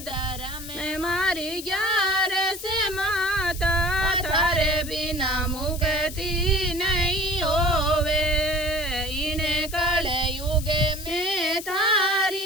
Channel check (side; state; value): left; noise; hiss, 12 dB below the sound